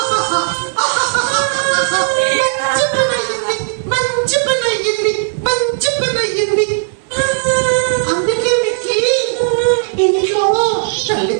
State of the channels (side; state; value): left; silent; 56 dB below the other